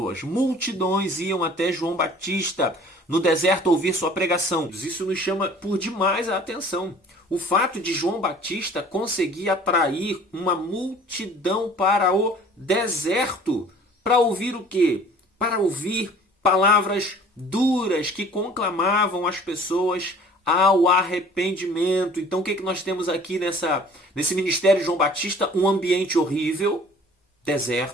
Multidões iam até João Batista no deserto ouvir sua pregação. Isso nos chama por demais a atenção. O fato de João Batista conseguir atrair uma multidão para o deserto. Para ouvir o quê? Para ouvir palavras duras que conclamavam as pessoas ao arrependimento. Então o que nós temos aqui nesse ministério de João Batista? Um ambiente horrível,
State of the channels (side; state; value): both; normal; correlation 0.49